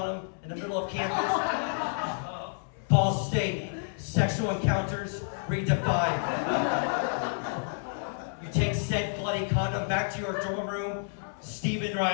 in the middle of campus, Ball State, Sexual Encounters Redefined. You take said bloody condom back to your dorm room, Stephen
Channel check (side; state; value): right; silent; 58 dB below the other